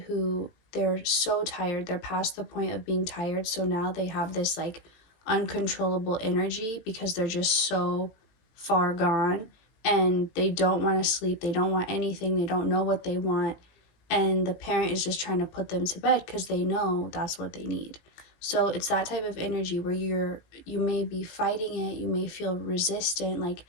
who they're so tired, they're past the point of being tired, so now they have this like uncontrollable energy because they're just so far gone and they don't want to sleep, they don't want anything, they don't know what they want, and the parent is just trying to put them to bed because they know that's what they need. So it's that type of energy where you may be fighting it, you may feel resistant, like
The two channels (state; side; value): late; right; 18 ms